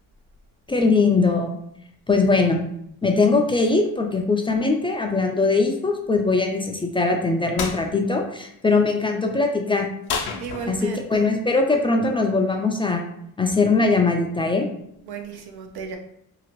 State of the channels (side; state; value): right; quieter; 3.2 dB